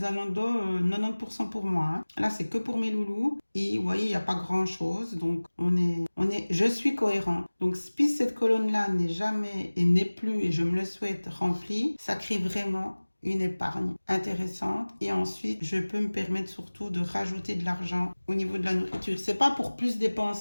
90% pour moi. Hein. Là, c'est que pour mes loulous. Et vous voyez, il n'y a pas grand-chose. Donc, je suis cohérent. Donc, si cette colonne-là n'est jamais et n'est plus, et je me le souhaite, remplie, ça crée vraiment une épargne intéressante et ensuite je peux me permettre surtout de rajouter de l'argent au niveau de la nourriture. C'est pas pour plus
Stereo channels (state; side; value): inverted; both; correlation -1.00